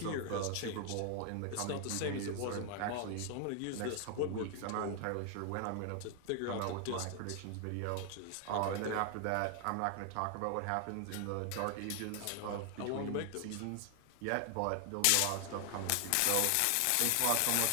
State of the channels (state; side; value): different; both; correlation 0.00